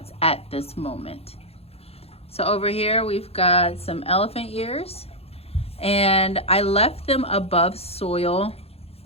at this moment. So over here we've got some elephant ears, and I left them above soil.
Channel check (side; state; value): right; late; 0.29 ms